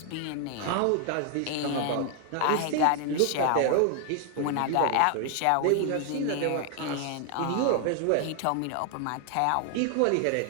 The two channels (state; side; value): different; both; correlation 0.00